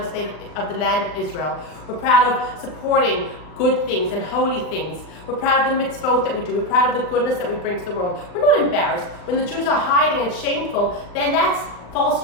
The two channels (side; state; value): right; late; 39 ms